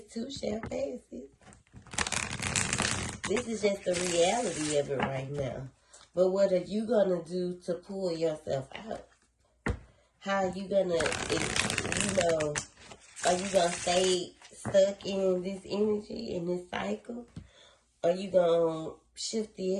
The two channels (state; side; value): identical; both; correlation 1.00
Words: too shall pass. This is just the reality of it right now. But what are you gonna do to pull yourself out? How are you gonna, are you gonna stay stuck in this energy, in this cycle? Or are you gonna shift